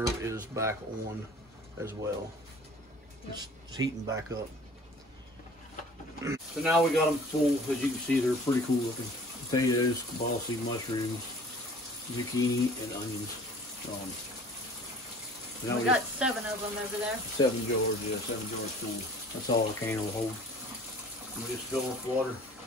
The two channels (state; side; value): normal; both; correlation 0.48